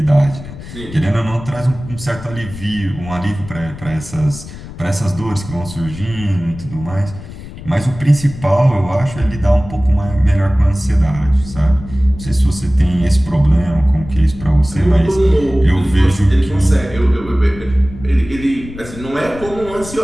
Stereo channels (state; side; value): noise; left; rumble, 13 dB below the sound